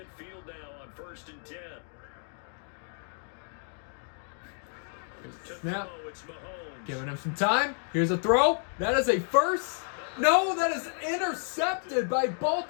now on 1st and 10. Here's the snap. Giving him some time. Here's a throw. That is a first. No, that is intercepted by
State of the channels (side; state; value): right; silent; 57 dB below the other